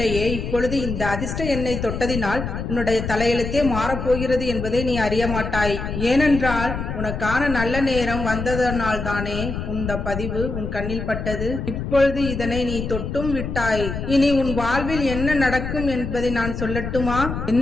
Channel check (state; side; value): noise; left; rumble, 5 dB below the sound